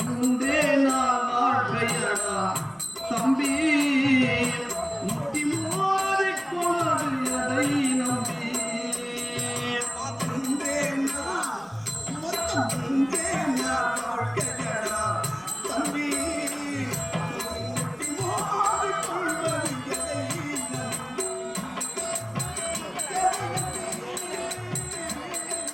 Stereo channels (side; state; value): both; identical; correlation 1.00